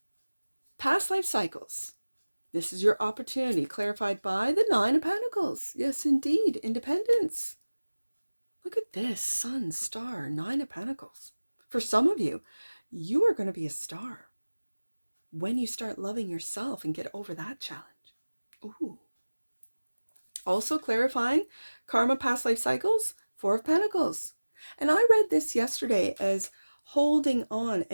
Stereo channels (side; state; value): both; inverted; correlation -1.00